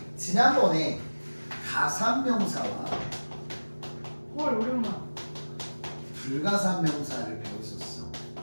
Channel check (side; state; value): both; inverted; correlation -1.00